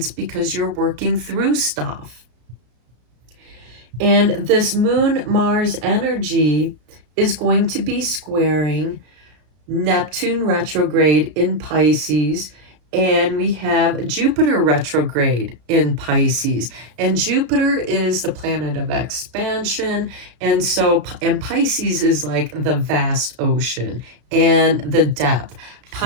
because you're working through stuff. And this Moon-Mars energy is going to be squaring Neptune retrograde in Pisces, and we have Jupiter retrograde in Pisces. And Jupiter is the planet of expansion, and Pisces is like the vast ocean and the depth.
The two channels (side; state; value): left; late; 33 ms